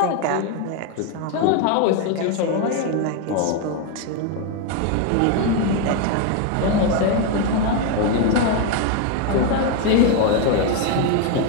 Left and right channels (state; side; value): different; both; correlation 0.01